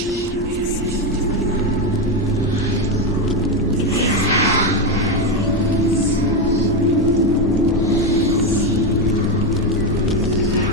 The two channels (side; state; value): both; normal; correlation 0.10